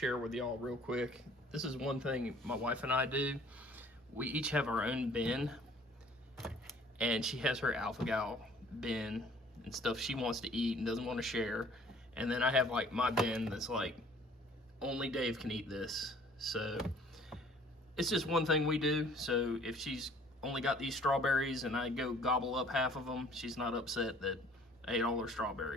with y'all real quick. This is one thing my wife and I do. we each have our own bin, and she has her alpha gal bin and stuff she wants to eat and doesn't want to share. And then I have like my bin that's like, only Dave can eat this. So it's just one thing we do. So if she's only got these strawberries and I go gobble up half of them, she's not upset that I ate all her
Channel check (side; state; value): both; normal; correlation 0.54